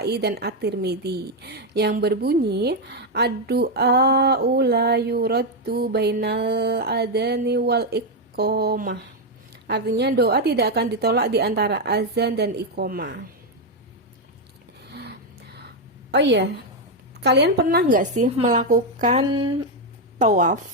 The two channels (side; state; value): both; normal; correlation 0.04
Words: dan At-Tirmidzi yang berbunyi ad-du'a la yuraddu bainal adani wal iqomah. Artinya doa tidak akan ditolak di antara azan dan iqomah. Oh iya, kalian pernah nggak sih melakukan